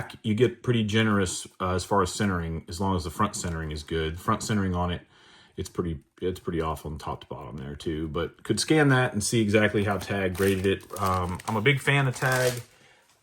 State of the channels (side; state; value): both; identical; correlation 1.00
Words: you get pretty generous as far as centering, as long as the front centering is good. Front centering on it, it's pretty off on top to bottom there too. But could scan that and see exactly how Tag graded it. I'm a big fan of Tag.